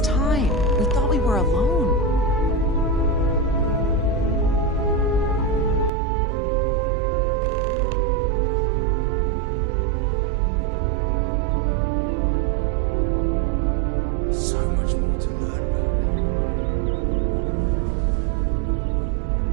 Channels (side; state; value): left; drops out; at 5.9 s